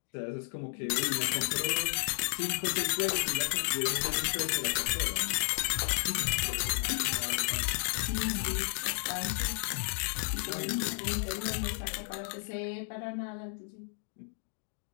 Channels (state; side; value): silent; right; 56 dB below the other